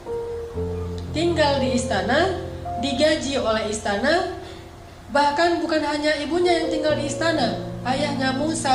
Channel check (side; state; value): both; identical; correlation 1.00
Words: Tinggal di istana, digaji oleh istana. Bahkan bukan hanya ibunya yang tinggal di istana, ayahnya